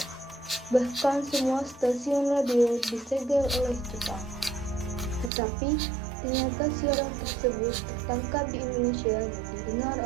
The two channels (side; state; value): left; drops out; at 5.3 s